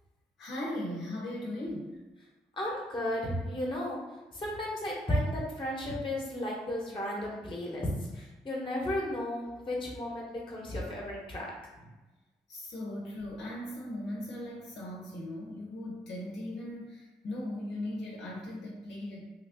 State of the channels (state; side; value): normal; both; correlation 0.72